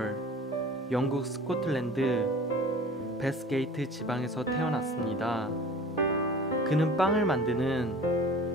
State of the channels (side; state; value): both; normal; correlation 0.42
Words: 영국 스코틀랜드 베스게이트 지방에서 태어났습니다. 그는 빵을